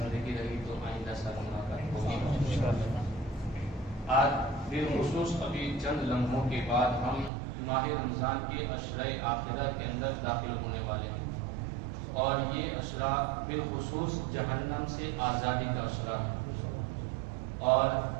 رہی تو آئندہ سال ملاقات ہوگی۔ آج بالخصوص ابھی چند لمحوں کے بعد ہم ماہ رمضان کے عشرۂ آخرہ کے اندر داخل ہونے والے ہیں اور یہ عشرہ بالخصوص جہنم سے آزادی کا عشرہ ہے اور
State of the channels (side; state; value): left; drops out; at 7.3 s